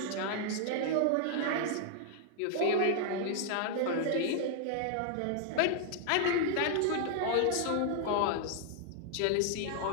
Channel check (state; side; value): different; both; correlation 0.00